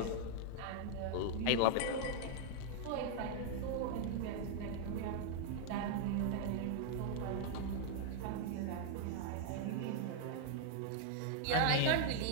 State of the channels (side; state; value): both; different; correlation 0.00